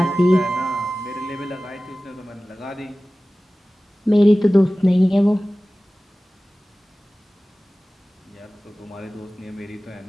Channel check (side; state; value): both; normal; correlation 0.97